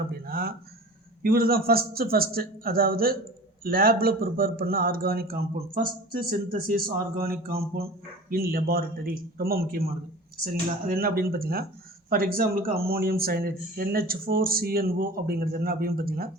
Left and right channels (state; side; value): normal; both; correlation 0.39